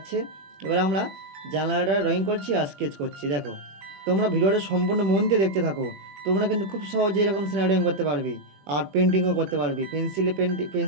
এবার আমরা জানালাটা ড্রয়িং করছি আর স্কেচ করছি। দেখো, তোমরা ভিডিওটা সম্পূর্ণ মন দিয়ে দেখতে থাকো। তোমরা কিন্তু খুব সহজে এরকম সিনারি ড্রয়িং করতে পারবে আর পেন্টিংও করতে পারবে।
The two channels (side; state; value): left; late; 21 ms